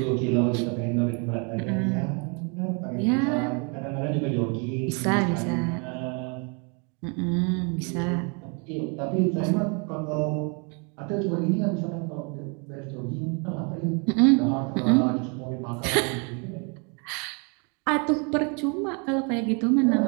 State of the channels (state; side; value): quieter; left; 34.6 dB